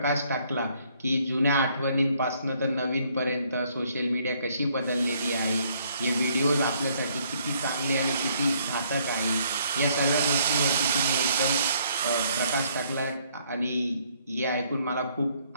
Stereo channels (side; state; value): both; inverted; correlation -0.66